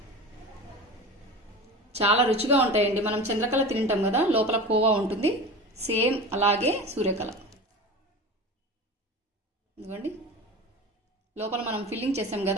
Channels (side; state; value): both; normal; correlation 0.31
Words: చాలా రుచిగా ఉంటాయండి. మనం చంద్రకళ తింటాం కదా, లోపల కోవా ఉంటుంది, సేమ్ అలాగే సూర్యకళ. ఇదిగోండి లోపల మనం ఫిల్లింగ్ చేసాం